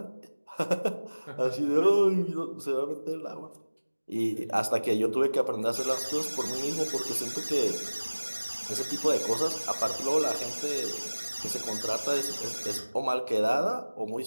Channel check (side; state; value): both; inverted; correlation -1.00